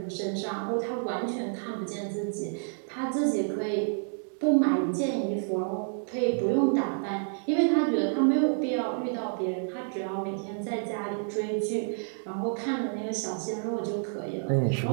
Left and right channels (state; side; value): silent; left; digital silence